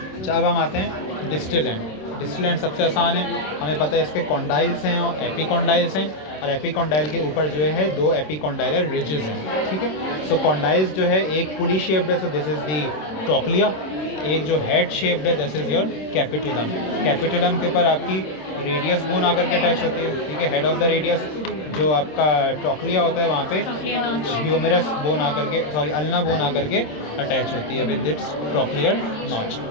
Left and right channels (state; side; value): late; right; 26 ms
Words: अच्छा, अब हम आते हैं डिस्टल एंड। डिस्टल एंड सबसे आसान है, हमें पता है इसके कॉन्डाइल्स हैं और एपिकॉन्डाइल्स हैं, और एपिकॉन्डाइल के ऊपर जो है दो एपिकॉन्डाइलर रिजेस हैं, ठीक है। सो कॉन्डाइल्स जो है एक पुली शेप्ड है, so this is the trochlea. एक जो हेड शेप्ड है this is your capitulum. Capitulum के ऊपर आपकी रेडियस बोन आकर के अटैच होती है, ठीक है, हेड ऑफ द रेडियस। जो आपका ट्रॉक्लिया होता है वहाँ पे ह्यूमेरस बोन आकर के, सॉरी अल्ना बोन आकर के अटैच होती है विद इट्स ट्रॉक्लियर नॉच,